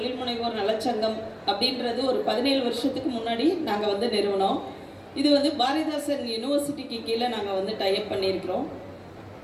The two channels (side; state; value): both; identical; correlation 1.00